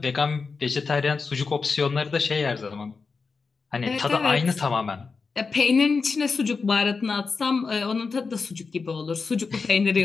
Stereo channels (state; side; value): quieter; right; 4.7 dB